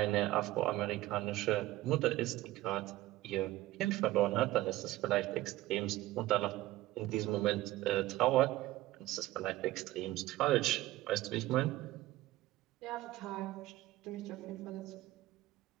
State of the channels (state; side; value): quieter; left; 16.9 dB